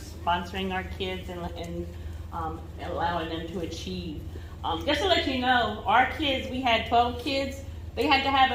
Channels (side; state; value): both; identical; correlation 1.00